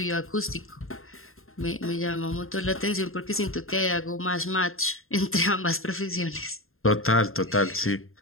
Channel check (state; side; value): late; right; 0.61 ms